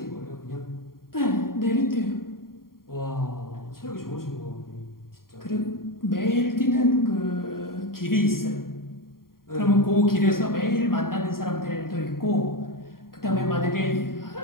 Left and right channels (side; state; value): right; late; 0.92 ms